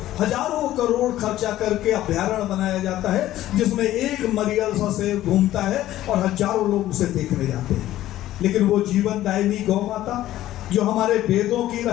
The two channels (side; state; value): right; quieter; 14.1 dB